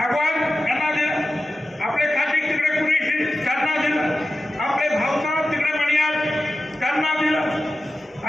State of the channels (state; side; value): normal; both; correlation 0.93